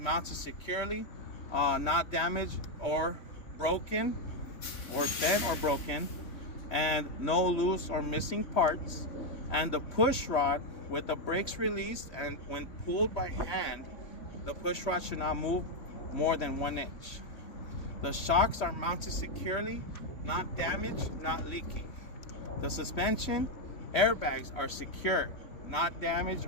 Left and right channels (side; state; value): right; late; 3.0 ms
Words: securely, not damaged or broken, or bent or broken, and no loose or missing parts. And the push rod with the brakes released, and when pulled by hand, the push rod should not move more than 1 inch. The shocks are mounted securely, not damaged, not leaking. The suspension airbags are secure, not damaged